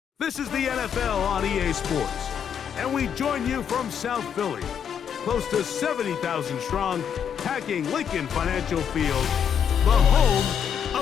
This is the NFL on EA Sports, and we join you from South Philly, close to 70,000 strong, packing Lincoln Financial Field, the home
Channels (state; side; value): quieter; right; 8.0 dB